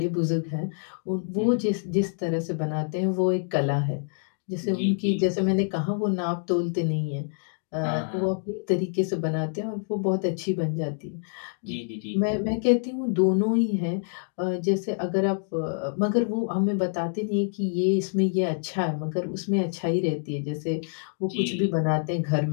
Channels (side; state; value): right; silent; digital silence